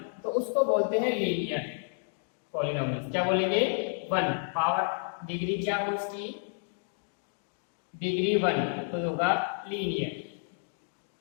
तो उसको बोलते हैं लीनियर पॉलिनोमियल। क्या बोलेंगे, 1 पावर डिग्री क्या हो उसकी, डिग्री 1, तो होगा लीनियर।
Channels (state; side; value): silent; right; digital silence